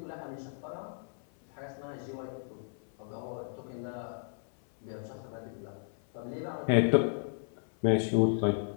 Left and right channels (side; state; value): right; silent; 55 dB below the other